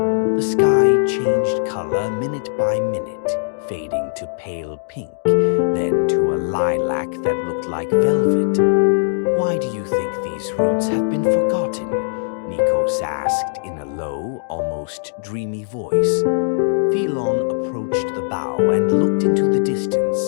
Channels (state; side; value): silent; right; digital silence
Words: sky changed color minute by minute, fading to pale pink, then to a lilac that looked like velvet. "Why do you think these roots have been forgotten?" Nikos asked in a low, almost dreamy voice. Philon approached the bow and looked into the